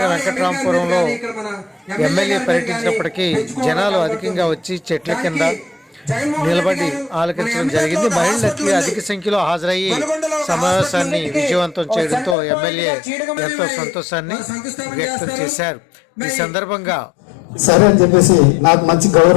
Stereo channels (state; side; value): drops out; right; at 12.4 s